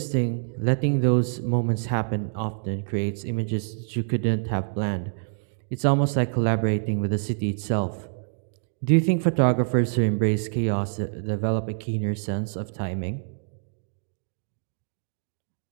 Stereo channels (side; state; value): left; silent; digital silence